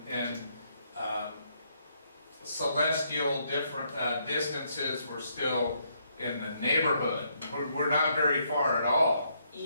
celestial different distances. We're still in the neighborhood. We're not very far at all.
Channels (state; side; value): inverted; both; correlation -0.73